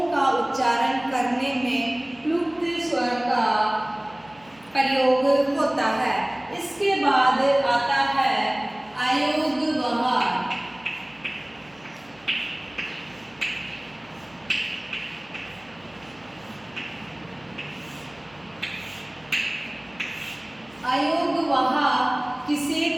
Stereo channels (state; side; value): noise; right; hum, 28 dB below the sound